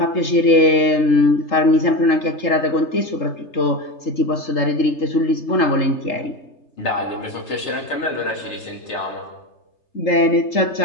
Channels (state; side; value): late; right; 3.3 ms